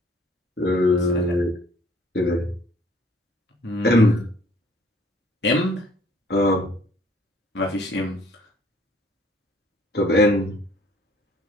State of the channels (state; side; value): normal; both; correlation 0.58